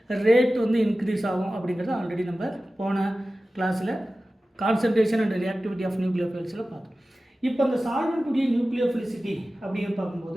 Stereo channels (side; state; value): both; normal; correlation 0.96